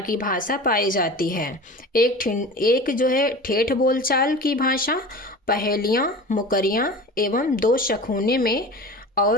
भाषा पाई जाती है। एक जो है ठेठ बोलचाल की भाषा, पहेलियाँ, मुकरियाँ एवं दो शखुने में,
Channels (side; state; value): both; normal; correlation 0.35